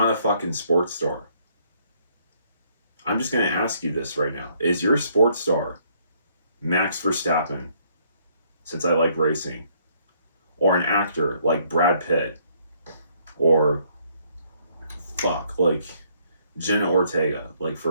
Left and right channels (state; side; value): inverted; both; correlation -0.67